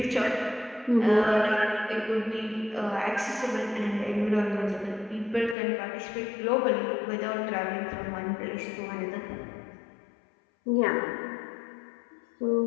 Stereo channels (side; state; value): right; drops out; at 5.6 s